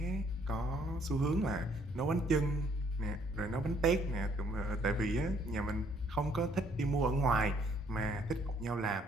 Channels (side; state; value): both; normal; correlation 0.65